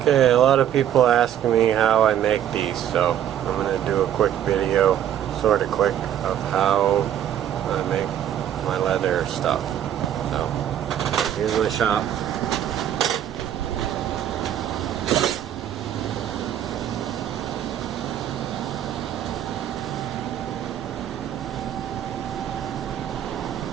Okay, a lot of people ask me how I make these, so I'm going to do a quick video, sort of quick, of how I make my leather stuff. So, here's my shop.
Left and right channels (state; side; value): quieter; left; 10.6 dB